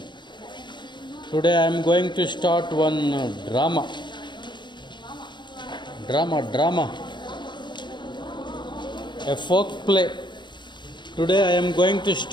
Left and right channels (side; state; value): right; late; 0.22 ms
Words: Today I am going to start one drama. A folk play. Today I am going to